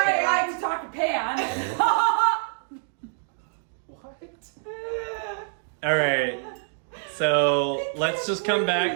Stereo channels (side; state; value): left; silent; digital silence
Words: I can talk to Pan. All right. So let's just come